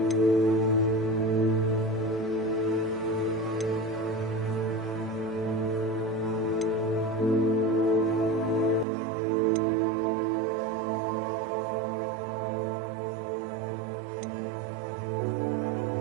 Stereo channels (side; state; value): left; drops out; at 8.8 s